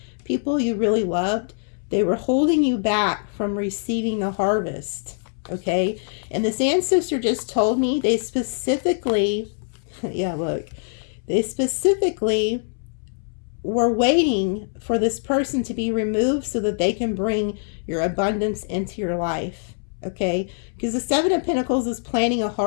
people you really loved, they were holding you back from receiving the harvest. Okay? And this ancestor just told me they specifically, yeah, look, they specifically were waiting for this person to be removed so that they can bring your abundance into your life. Okay? Because the Seven of Pentacles is planting a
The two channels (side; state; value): right; silent; 63 dB below the other